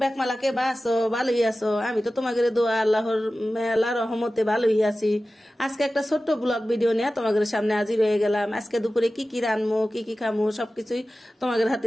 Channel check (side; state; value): both; normal; correlation 0.95